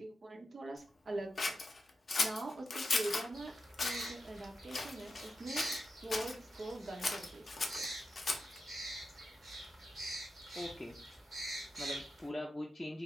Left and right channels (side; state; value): both; normal; correlation 0.89